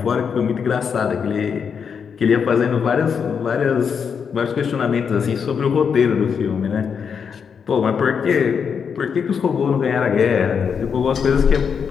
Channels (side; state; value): right; quieter; 6.6 dB